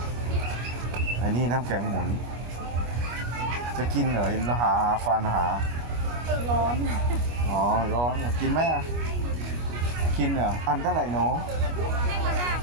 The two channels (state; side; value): late; left; 25 ms